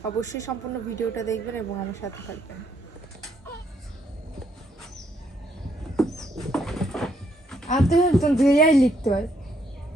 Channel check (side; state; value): both; normal; correlation 0.72